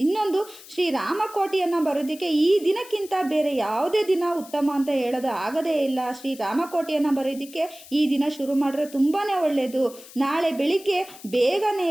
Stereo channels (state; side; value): noise; left; hiss, 19 dB below the sound